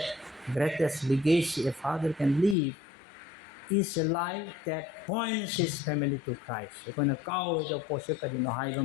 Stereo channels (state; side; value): drops out; right; at 2.6 s